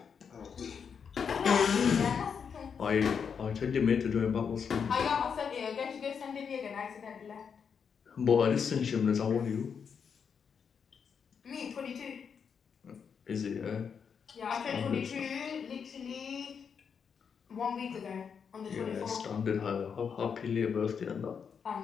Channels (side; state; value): right; quieter; 6.7 dB